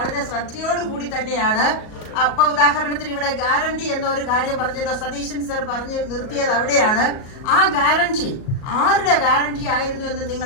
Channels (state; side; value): late; right; 37 ms